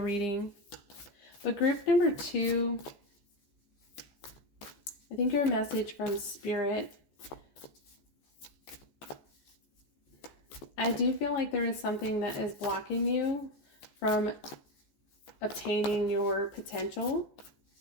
But group number 2, I think your message from Spirit, I do feel like there is something that is blocking you from obtaining your potential.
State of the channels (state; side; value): late; right; 14 ms